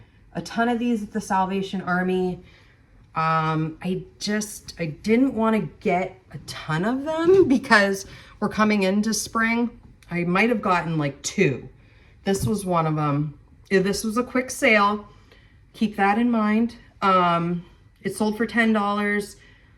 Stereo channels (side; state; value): both; identical; correlation 1.00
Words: a ton of these at the Salvation Army. I didn't want to get a ton of them because we're coming into spring. I might have gotten like 2. This was one of them. This was a quick sale. Keep that in mind. It sold for $10.